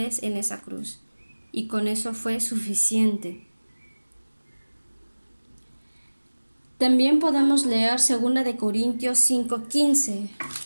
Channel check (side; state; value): both; inverted; correlation -1.00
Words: en esa cruz, y con eso fue suficiente. También podemos leer 2 de Corintios 5:15.